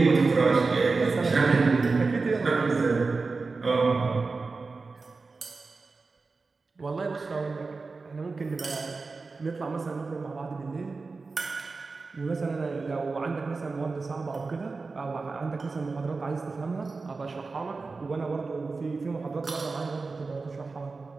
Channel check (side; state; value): left; quieter; 4.1 dB